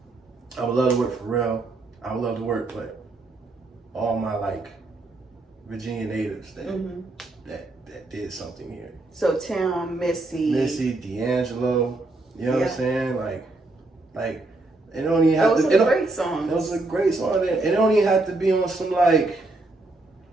would love to work for Pharrell. I would love to work with all my like Virginia natives that did something here. So Tim, Missy, D'Angelo, you know what I'm saying? Like it don't even have those are great songs. Those are great songs. It don't even have to be on some like,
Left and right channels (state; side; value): quieter; left; 3.0 dB